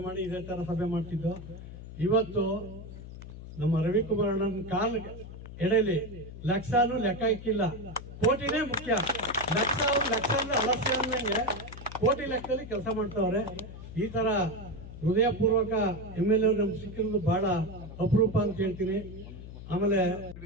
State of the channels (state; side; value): noise; left; hum, 13 dB below the sound